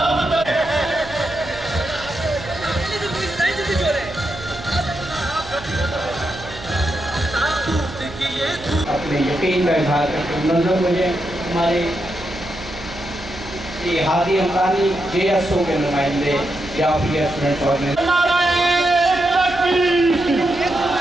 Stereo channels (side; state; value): right; noise; hum, 15 dB below the sound